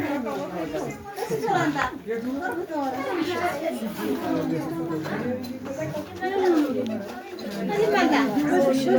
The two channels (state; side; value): identical; both; correlation 1.00